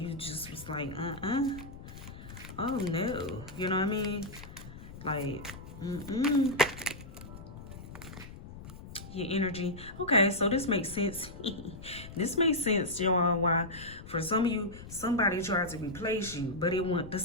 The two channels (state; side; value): noise; left; rumble, 14 dB below the sound